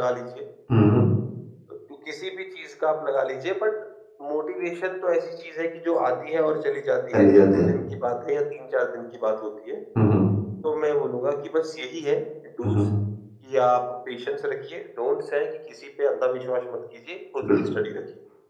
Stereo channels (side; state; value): both; identical; correlation 1.00